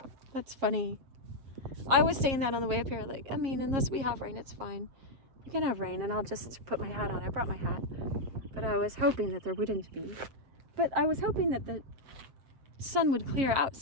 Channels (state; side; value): late; left; 7.4 ms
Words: That's funny. I was saying that on the way up here, like, I mean, unless we have rain, it's fine. You can have rain, and I'll just put my hat on. I brought my hat. But I was hoping that there wouldn't be. But I was hoping that the sun would clear out